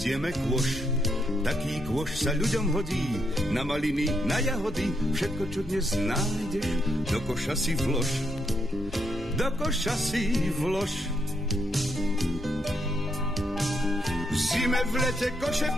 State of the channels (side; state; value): both; normal; correlation 0.78